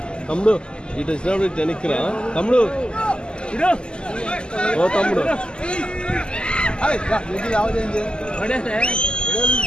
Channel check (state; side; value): late; right; 0.048 ms